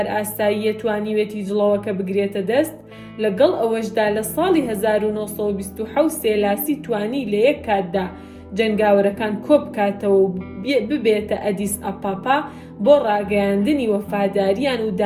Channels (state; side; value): identical; both; correlation 1.00